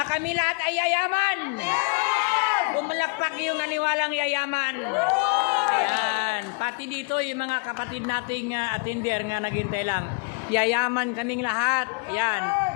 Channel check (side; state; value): right; quieter; 33.7 dB